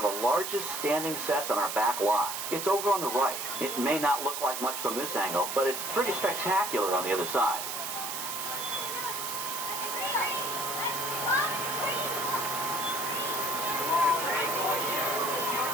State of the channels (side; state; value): right; noise; hiss, 4 dB below the sound